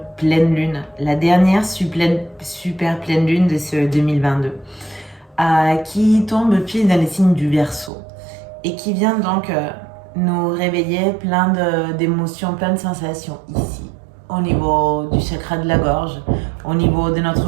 pleine lune, la dernière super pleine lune de ce 2022, qui tombe pile dans les signes du Verseau et qui vient donc nous réveiller plein d'émotions, plein de sensations ici, au niveau du chakra de la gorge, au niveau de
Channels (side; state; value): left; drops out; at 7.9 s